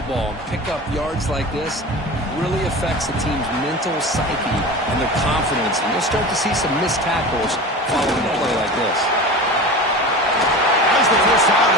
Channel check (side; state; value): both; normal; correlation 0.32